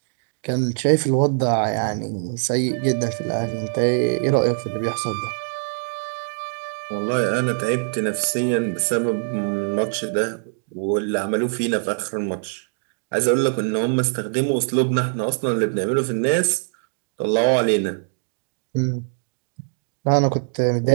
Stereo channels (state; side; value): silent; left; digital silence